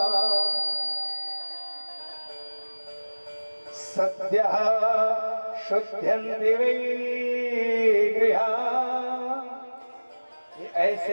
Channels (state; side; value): inverted; both; correlation -1.00